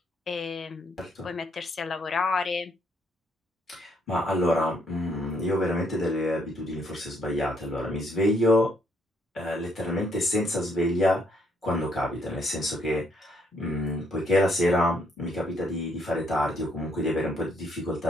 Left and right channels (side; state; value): both; normal; correlation 0.71